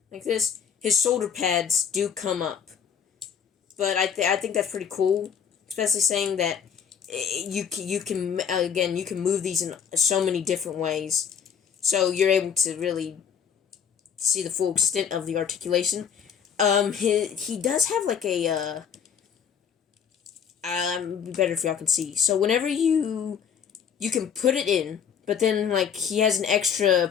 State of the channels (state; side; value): quieter; right; 7.5 dB